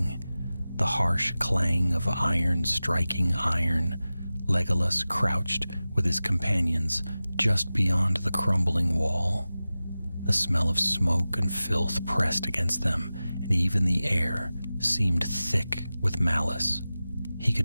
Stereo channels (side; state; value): both; inverted; correlation -0.96